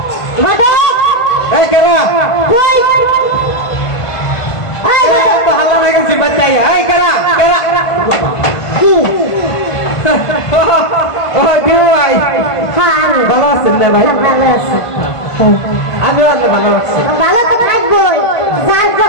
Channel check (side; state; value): right; late; 1.5 ms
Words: ঘটক ঘটক এই কেরা কই? এই ঘটক তো হাল্লা হয়ে গেছি বাচ্চাই। এই কেরা কেরা? কি? ও কেউ ভাই হ্যাঁ আমি ভালো আছেন না ভাই? ভালো আছি। আমিও অনেক ভালো আছি। ভালো তো থাকবোই, যার